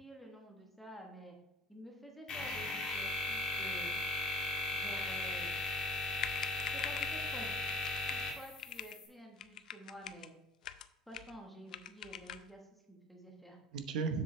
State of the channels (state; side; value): normal; both; correlation 0.49